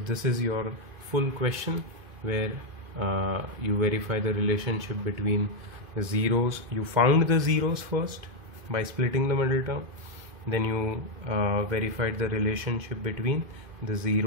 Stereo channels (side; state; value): left; late; 2.5 ms